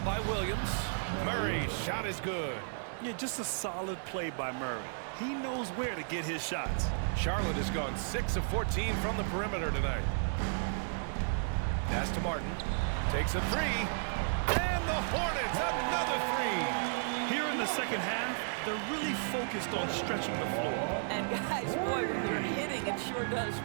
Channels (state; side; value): silent; left; digital silence